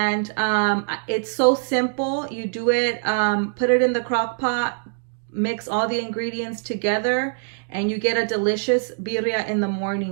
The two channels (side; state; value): left; silent; digital silence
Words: it's so simple. You do it, put it in the crock pot, mix all the ingredients together, and you get a delicious birria in the